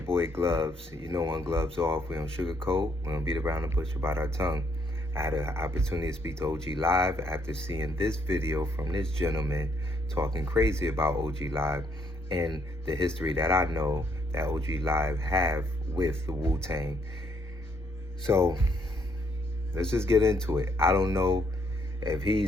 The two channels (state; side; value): normal; both; correlation 0.71